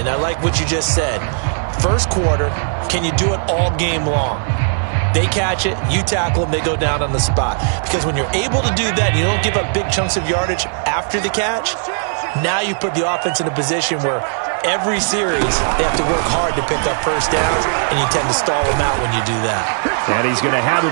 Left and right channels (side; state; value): left; silent; digital silence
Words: I like what you just said. First quarter, can you do it all game long? They catch it, you tackle them, they go down on the spot. Because when you're able to do that, you don't give up big chunks of yardage after the catch, now you put the offense in a position where every series they have to work hard to pick up first downs, and you tend to stall them out when you do that. And he's going to have